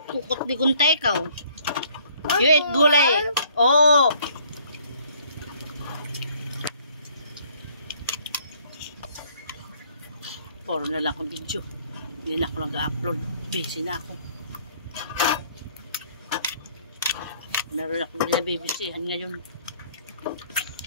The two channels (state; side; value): inverted; both; correlation -0.59